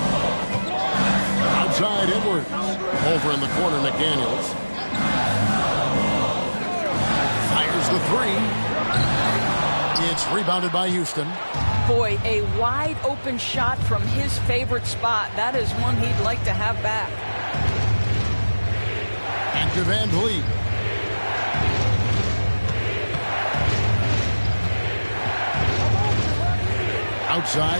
Outside Edwards. Over in the corner, McDaniels. Fires the three. It's rebounded by Houston. Boy, a wide open shot from his favorite spot. That is one he'd like to have back. And to Van Vliet.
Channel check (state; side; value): inverted; both; correlation -1.00